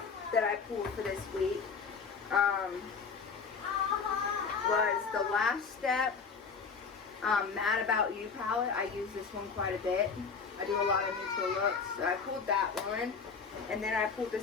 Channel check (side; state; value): right; quieter; 5.4 dB